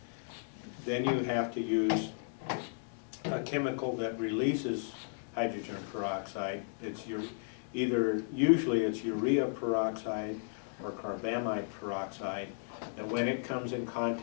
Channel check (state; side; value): silent; right; 55 dB below the other